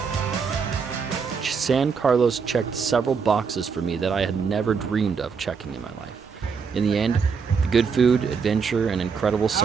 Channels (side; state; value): left; quieter; 5.8 dB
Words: it. San Carlos checked several boxes for me that I had never dreamed of checking in my life. In the end, the good food, adventure, and incredible